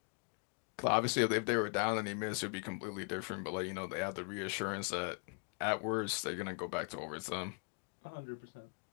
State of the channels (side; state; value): right; quieter; 38.5 dB